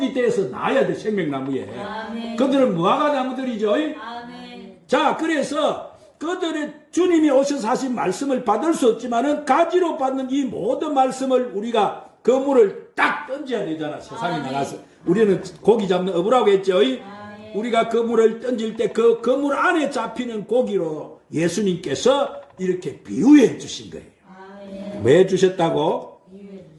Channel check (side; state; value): both; identical; correlation 1.00